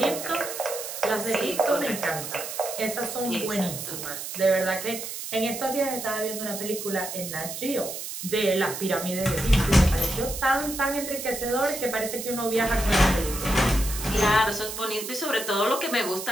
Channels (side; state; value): right; noise; hiss, 7 dB below the sound